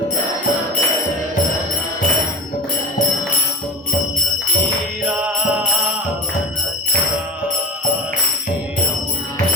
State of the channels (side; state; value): both; normal; correlation 0.30